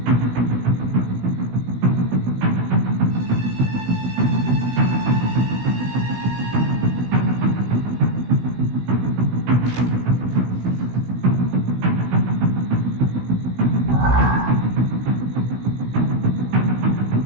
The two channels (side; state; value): left; late; 16 ms